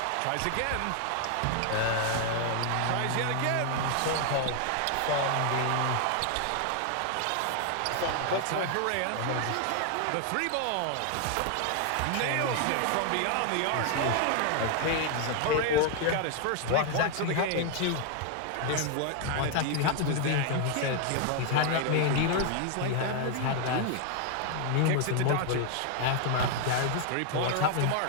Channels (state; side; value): different; both; correlation 0.00